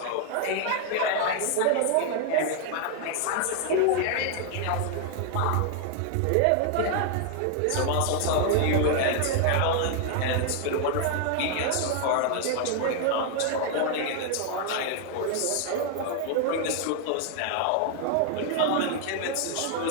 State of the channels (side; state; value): both; different; correlation 0.00